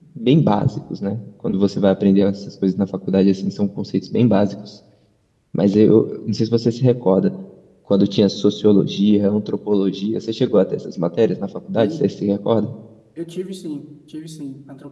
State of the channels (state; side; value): identical; both; correlation 1.00